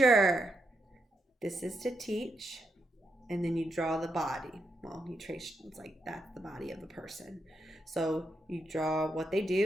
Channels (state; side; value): normal; both; correlation 0.83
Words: This is to teach. And then you draw the body. Well, you trace, it's like that's the body of the person. So you draw what they